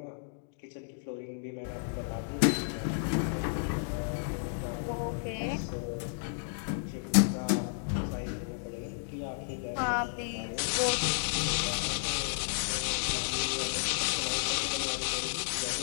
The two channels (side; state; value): right; silent; digital silence